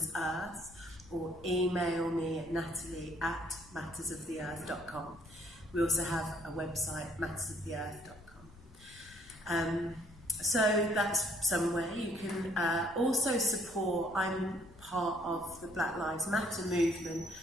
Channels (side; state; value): left; noise; rumble, 21 dB below the sound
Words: or email me at natalie@mattersoftheearth.com. We also have a website, mattersoftheearth.com. So that's somewhere you can also support. I'm part of the Black Lives Matter movement,